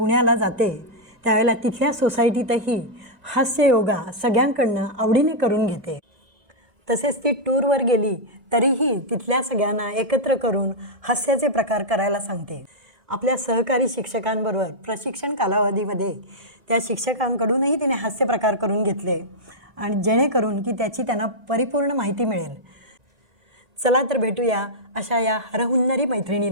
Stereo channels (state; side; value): late; left; 1.9 ms